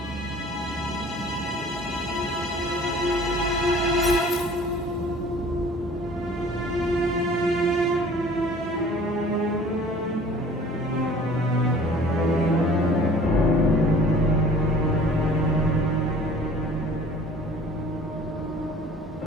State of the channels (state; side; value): normal; both; correlation 0.49